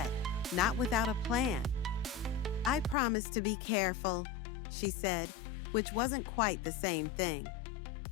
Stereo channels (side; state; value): right; drops out; at 3.0 s